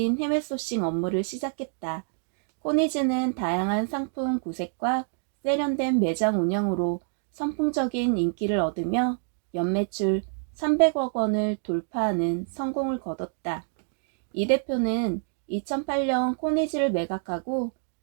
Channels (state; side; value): silent; left; digital silence